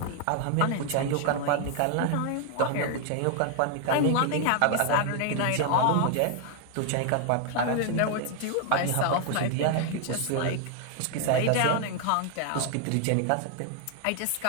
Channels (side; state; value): both; different; correlation 0.00